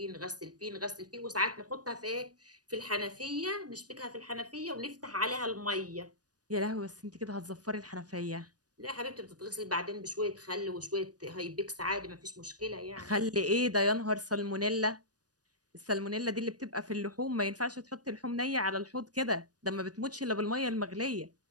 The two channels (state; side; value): late; left; 0.68 ms